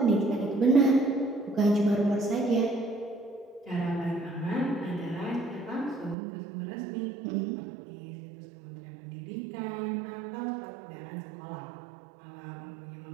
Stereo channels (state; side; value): drops out; left; at 6.2 s